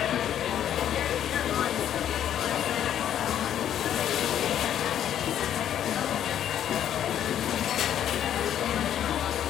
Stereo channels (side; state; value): right; quieter; 10.4 dB